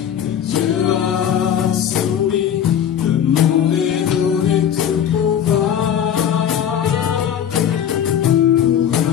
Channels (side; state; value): right; quieter; 9.2 dB